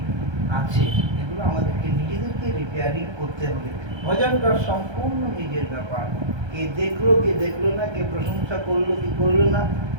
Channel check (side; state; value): left; late; 1.3 ms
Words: আছে, এগুলো আমাদেরকে নিজেদেরকে রিপেয়ারিং করতে হবে। ভজনটা সম্পূর্ণ নিজের ব্যাপার। কে দেখলো না, কে প্রশংসা করলো কি করলো না,